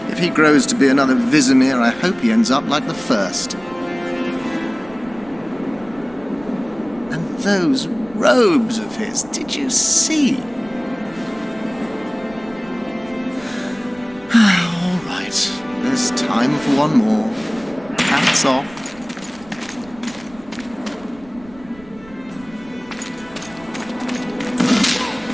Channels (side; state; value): right; noise; rumble, 22 dB below the sound